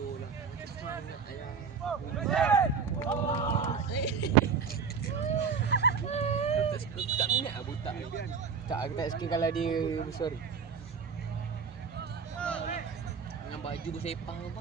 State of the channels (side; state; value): left; quieter; 5.9 dB